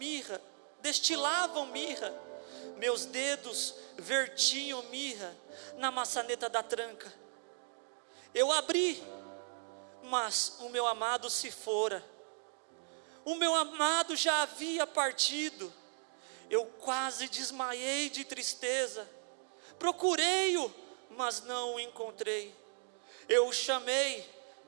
meus dedos vertiam mirra na maçaneta da tranca. Eu abri, mas o meu amado se fora. O meu amado já havia partido. Eu quase desmaiei de tristeza. Procurei-o, mas não o encontrei. Eu o chamei,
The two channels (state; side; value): silent; left; 53 dB below the other